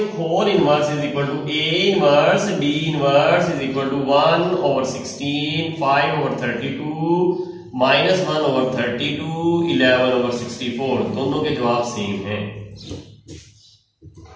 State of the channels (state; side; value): identical; both; correlation 1.00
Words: whole inverse is equal to A inverse D inverse is equal to 1/16 5/32 minus 1/32 11/64 दोनों के जवाब सेम हैं।